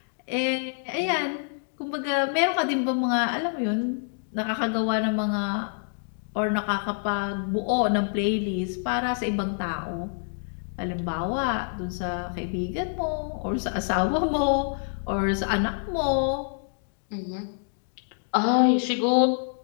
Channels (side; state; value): right; silent; digital silence